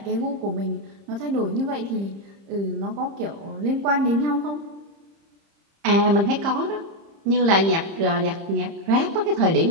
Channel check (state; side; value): late; left; 30 ms